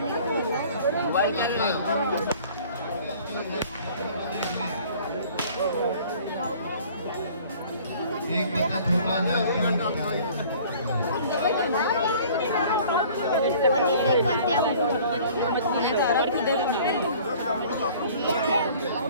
एक बच्चा छोटा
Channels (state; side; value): inverted; both; correlation -0.50